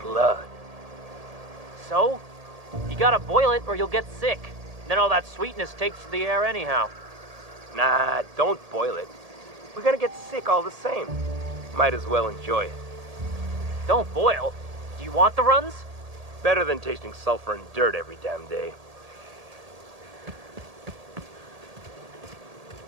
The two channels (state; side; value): late; left; 1.8 ms